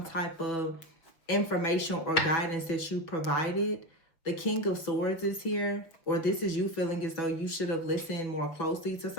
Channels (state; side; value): late; right; 6.1 ms